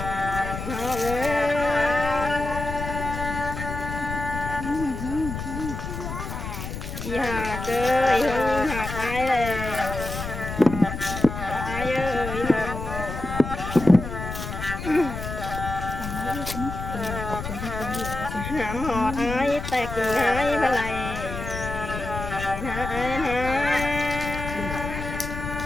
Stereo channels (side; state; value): left; noise; rumble, 6 dB below the sound